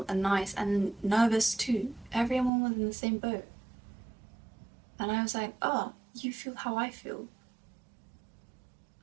and nice and nervous too. Everyone was in the same boat. And I was like, oh, you feel how I feel.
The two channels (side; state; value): left; drops out; at 2.5 s